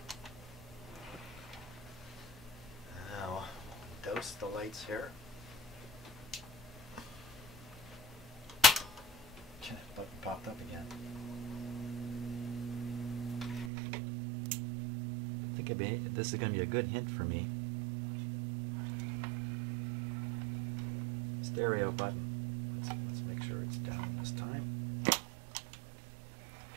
Douse the lights here. Button popped up again. I think this is going to be a good hint for me. stereo button. Let's make sure it's down this time.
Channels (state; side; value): drops out; left; at 13.7 s